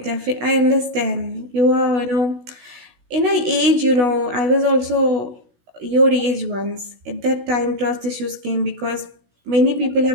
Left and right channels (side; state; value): left; late; 16 ms